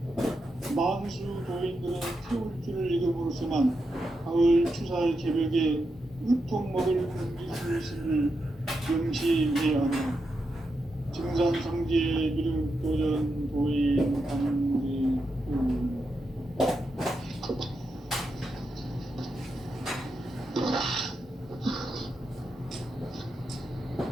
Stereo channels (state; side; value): normal; both; correlation 0.86